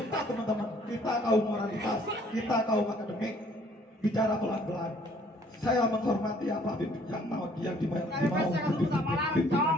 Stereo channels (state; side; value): normal; both; correlation 0.60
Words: teman-teman. Kita kaum moralitas, kita kaum akademik bicara pelan-pelan. Saya menghormati apa yang mau pimpinan.